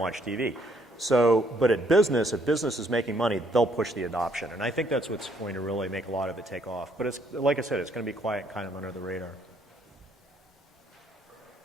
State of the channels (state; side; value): normal; both; correlation 0.68